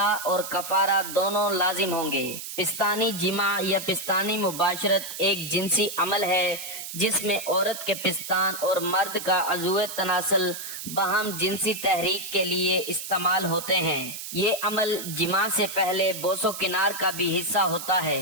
اور کفارہ دونوں لازم ہوں گے۔ پستانی جماع یا پستانی مباشرت ایک جنسی عمل ہے جس میں عورت کے پستان اور مرد کا عضو تناسل باہم جنسی تحریک کے لیے استعمال ہوتے ہیں۔ یہ عمل جماع سے پہلے بوس و کنار کا بھی حصہ ہوتا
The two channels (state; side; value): noise; right; hiss, 8 dB below the sound